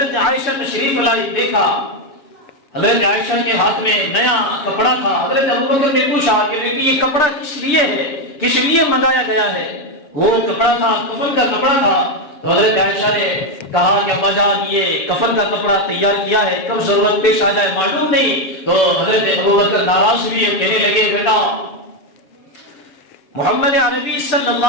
عائشہ تشریف لائی، دیکھا حضرت عائشہ کے ہاتھ میں نیا کپڑا تھا، حضرت ابو بکر نے پوچھا کہ یہ کپڑا کس لیے ہے، کس لیے منگایا گیا ہے؟ وہ کپڑا تھا کفن کا کپڑا تھا، تو حضرت عائشہ نے کہا کہ ابا جان یہ کفن کا کپڑا تیار کیا ہے، کب ضرورت پیش آ جائے معلوم نہیں۔ تو حضرت ابو بکر ناراض ہوئے، کہنے لگے بیٹا محمد عربی صلی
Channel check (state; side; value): late; right; 7.3 ms